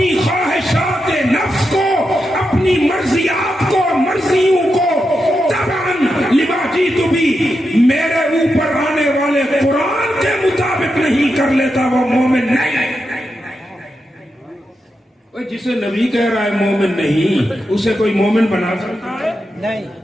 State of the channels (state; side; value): normal; both; correlation 0.87